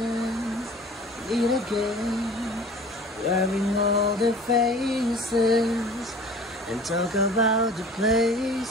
meet again, wearing all their faces, and talk about the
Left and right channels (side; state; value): both; normal; correlation 0.44